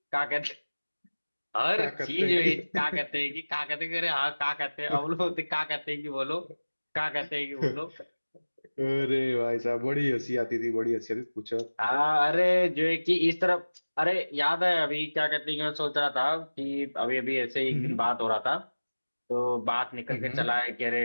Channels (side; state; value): both; inverted; correlation -1.00